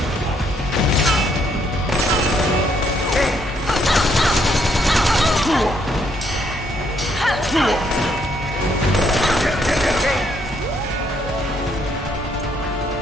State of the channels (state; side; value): normal; both; correlation 0.71